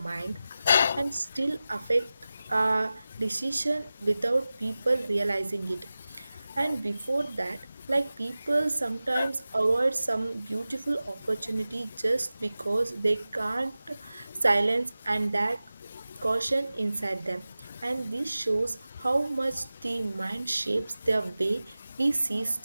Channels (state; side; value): inverted; both; correlation -0.96